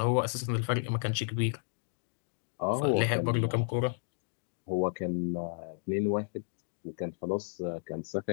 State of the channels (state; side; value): silent; right; digital silence